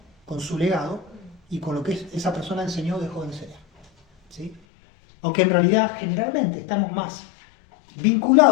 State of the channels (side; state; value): right; drops out; at 4.6 s